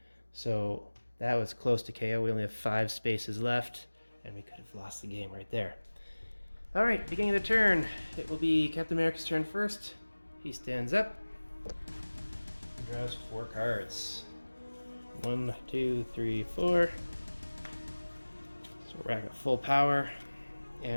So that was close to KO. We only have 5 spaces left, and we could have lost the game right there. Alright, beginning of the turn. It will be Captain America's turn first. He stands up and draws 4 cards. 1, 2, 3, 4. So we're at full power.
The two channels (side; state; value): both; inverted; correlation -1.00